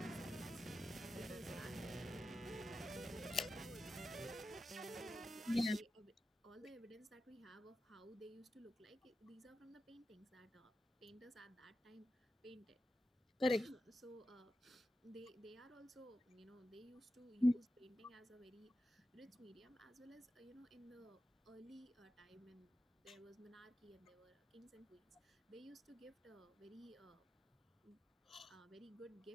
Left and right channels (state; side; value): normal; both; correlation 0.91